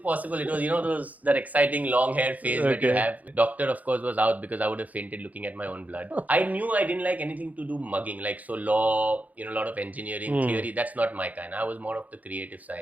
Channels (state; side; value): late; left; 0.077 ms